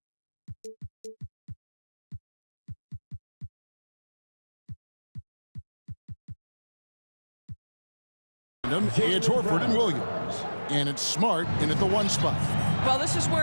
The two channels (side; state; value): both; inverted; correlation -1.00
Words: It's Horford and Williams. And it's Smart in at the 1 spot. Well, this is